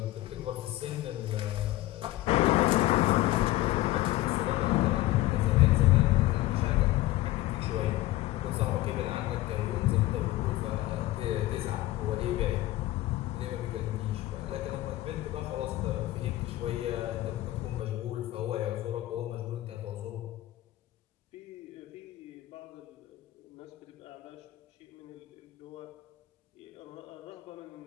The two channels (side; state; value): right; quieter; 16.8 dB